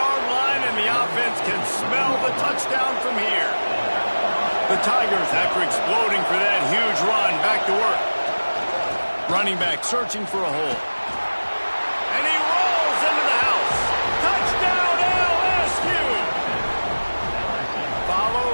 line, and the offense can smell the touchdown from here. The Tigers, after exploding for that huge run, back to work. Running back searching for a hole. And he rolls into the house.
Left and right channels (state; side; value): inverted; both; correlation -1.00